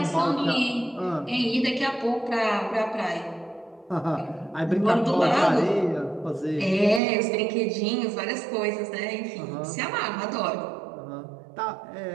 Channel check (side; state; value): left; drops out; at 7.0 s